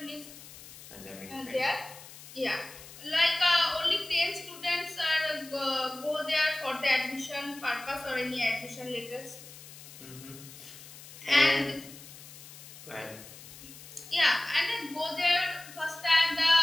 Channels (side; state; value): left; noise; hiss, 17 dB below the sound